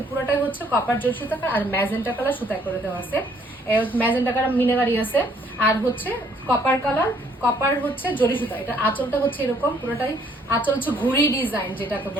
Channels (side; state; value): both; normal; correlation 0.64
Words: পুরোটাই হচ্ছে কপার জরি সুতা আর ম্যাজেন্টা কালার সুতায় করে দেওয়া আছে। ম্যাজেন্টা কালার মিনারি আছে। আর হচ্ছে কপার হচ্ছে জরি সুতা। এটা আঁচলটা হচ্ছে এরকম পুরোটাই, আঁচল হচ্ছে ঘুড়ি ডিজাইন যেটাকে